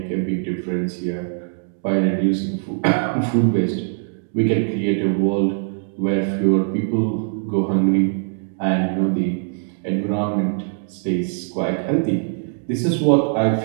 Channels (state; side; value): silent; left; digital silence